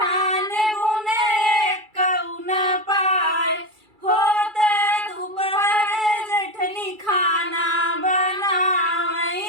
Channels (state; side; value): late; left; 2.3 ms